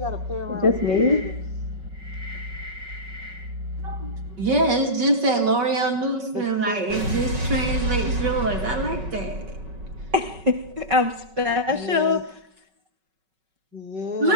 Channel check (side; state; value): left; late; 5.3 ms